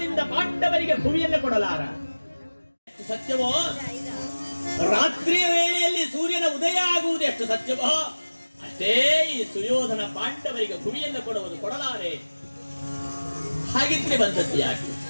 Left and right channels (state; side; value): inverted; both; correlation -1.00